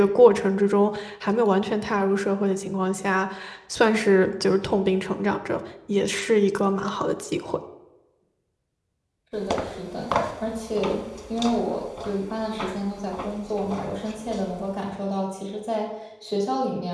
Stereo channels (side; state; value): both; identical; correlation 1.00